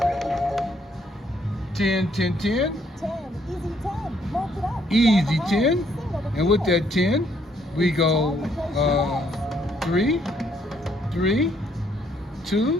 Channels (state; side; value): normal; both; correlation 0.69